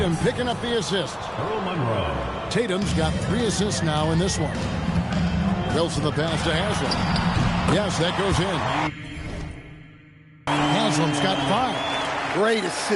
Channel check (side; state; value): both; identical; correlation 1.00